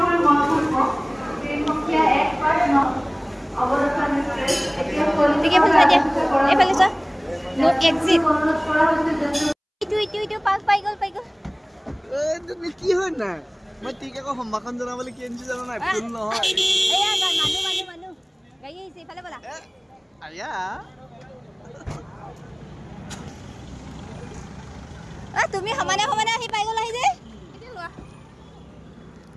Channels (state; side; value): identical; both; correlation 1.00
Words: এইফালে চোৱা নো এক্সিট ইটো পাছ পাই গ'ল তুমি কি হয় না মই ঠিক আকৌ সম্ভাষণ জনাবলৈ কি আনিছো জানো নাই ফুল নহয় এয়া মানুহ গাড়ী আহিছে এইফালে বলা আয়া তুমি সমানে আহি পাই গ'লা আহি যে